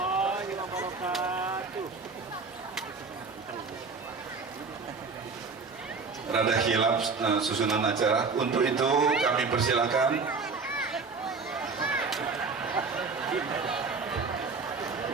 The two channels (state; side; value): quieter; left; 4.6 dB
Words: wabarakatuh. Rada hilaf susunan acara. Untuk itu kami persilakan